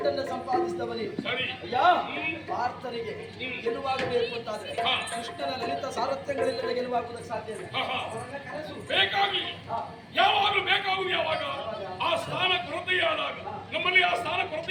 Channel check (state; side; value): identical; both; correlation 1.00